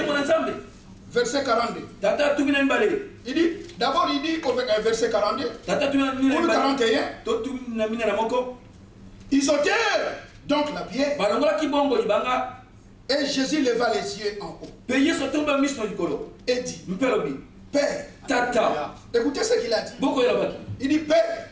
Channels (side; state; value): both; identical; correlation 1.00